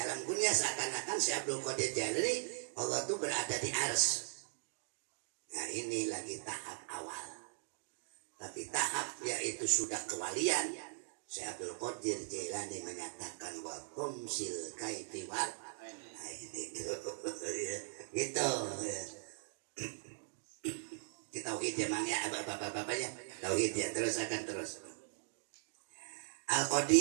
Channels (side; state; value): left; silent; digital silence